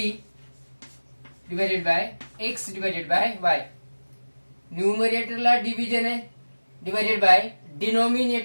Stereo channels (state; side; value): inverted; both; correlation -1.00